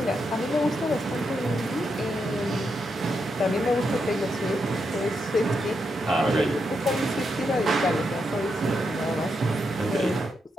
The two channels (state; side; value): normal; both; correlation 0.83